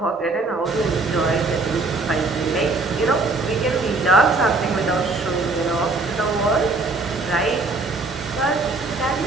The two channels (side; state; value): left; quieter; 3.5 dB